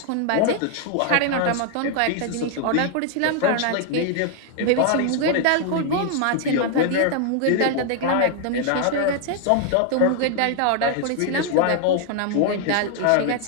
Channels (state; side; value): different; both; correlation 0.00